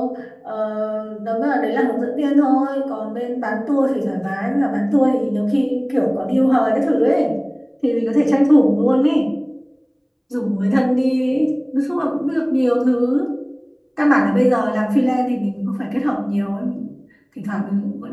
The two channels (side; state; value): both; identical; correlation 1.00